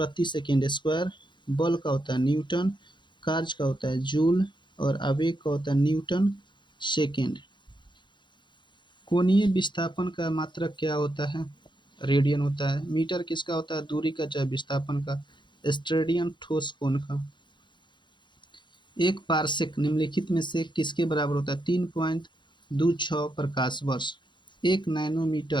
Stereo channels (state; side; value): late; right; 0.23 ms